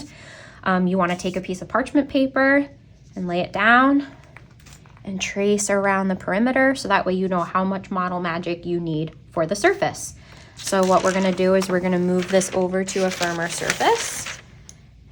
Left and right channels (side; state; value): both; identical; correlation 1.00